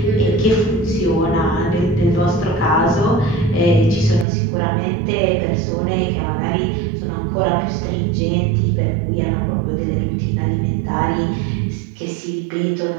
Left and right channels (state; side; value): drops out; left; at 4.2 s